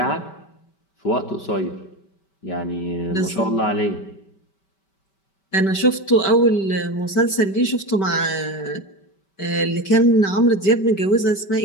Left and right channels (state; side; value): late; right; 5.2 ms